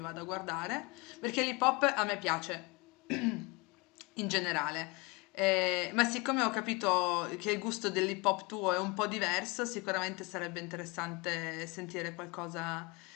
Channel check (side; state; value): right; quieter; 27.2 dB